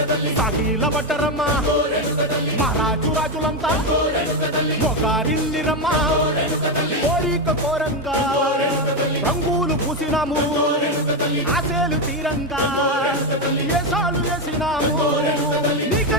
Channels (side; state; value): both; normal; correlation 0.09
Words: సాగిల పడ్డరమ్మా మహారాజు రాజులంతా మొగారిల్లిరమ్మా కోరిక కోరంగా రంగులు పూసినాము ఆశలు తీరంగా ఏసాలు వేసినాము